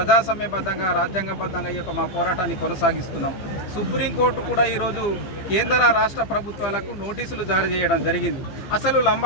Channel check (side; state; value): right; late; 15 ms